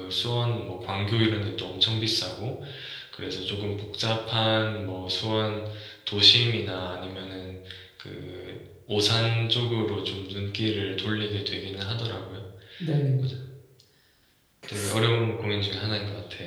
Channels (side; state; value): both; identical; correlation 1.00